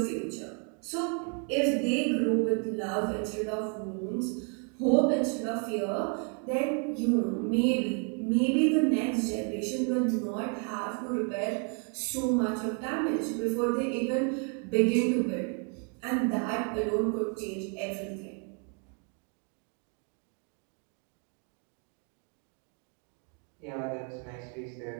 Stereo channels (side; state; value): left; quieter; 39.9 dB